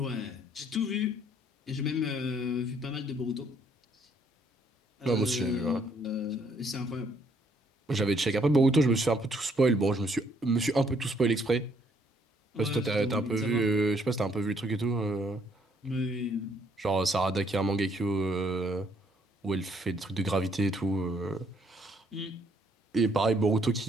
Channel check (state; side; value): normal; both; correlation 0.67